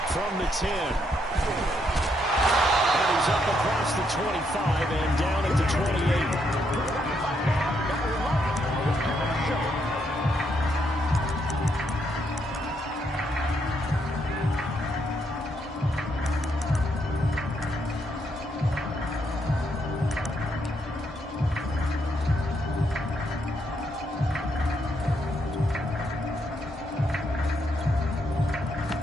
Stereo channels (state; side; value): normal; both; correlation 0.76